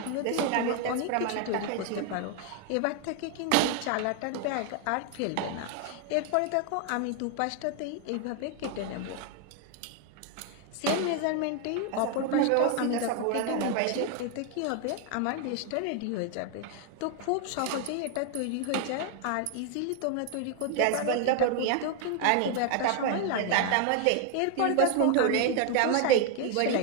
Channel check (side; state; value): both; different; correlation 0.01